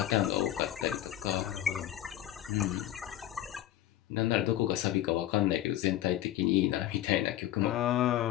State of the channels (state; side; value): quieter; right; 13.1 dB